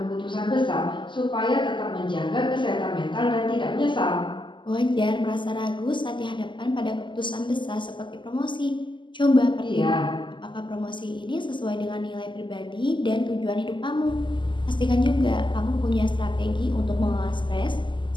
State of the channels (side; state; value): right; late; 0.24 ms